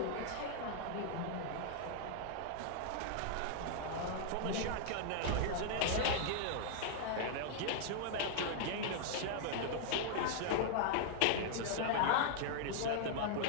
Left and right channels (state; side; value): different; both; correlation -0.01